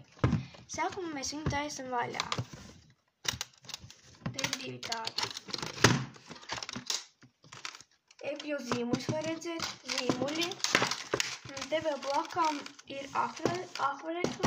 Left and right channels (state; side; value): identical; both; correlation 1.00